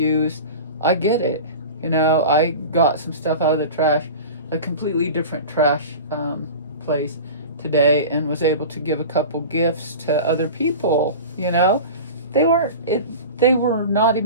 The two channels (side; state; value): both; inverted; correlation -0.33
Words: I get it. I got some stuff out of the trash, a completely different trash place today, and was able to give a couple gifts to other people. They were not